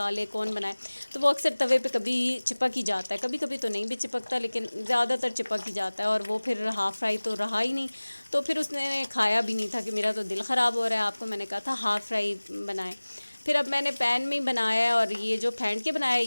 कौन बनाए, तो वो अक्सर तवे पे कभी चिपक ही जाता है, कभी कभी तो नहीं भी चिपकता लेकिन ज़्यादातर चिपक ही जाता है। और वो फिर हाफ़ फ्राई तो रहा ही नहीं, तो फिर उसने खाया भी नहीं था कि मेरा तो दिल ख़राब हो रहा है, आपको मैंने कहा था हाफ़ फ्राई बनाएं। फिर अब मैंने पैन में ही बनाया है और ये जो फेंट के बनाया है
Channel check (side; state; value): both; inverted; correlation -1.00